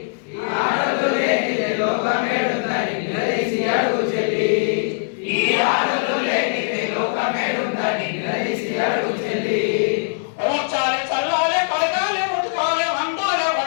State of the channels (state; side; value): silent; right; 64 dB below the other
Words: ఆడలు లేనిదే లోకమేడుందని నిలదీసి అడుగు చెల్లి. ఈ ఆడలు లేనిదే లోకమేడుందని నిలదీసి అడుగు చెల్లి. ఊర్చాలే చల్లాలే కడగాలే ఉతకాలే వండాలే